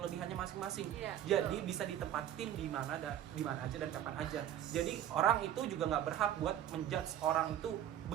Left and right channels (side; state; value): left; quieter; 11.0 dB